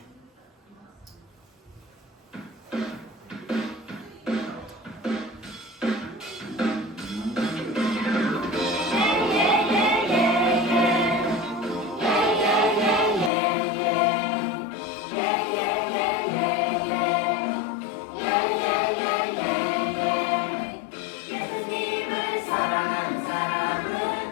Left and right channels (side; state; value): right; drops out; at 13.3 s